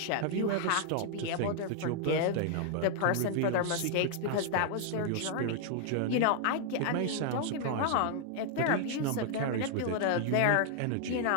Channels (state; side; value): different; both; correlation 0.00